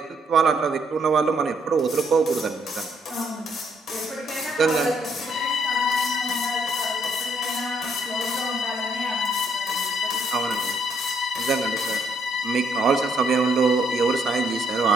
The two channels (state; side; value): normal; both; correlation 0.71